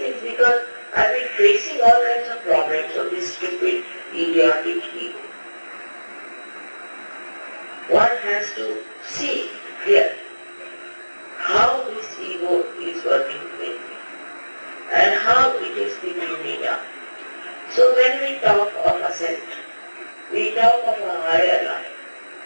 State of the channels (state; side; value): inverted; both; correlation -1.00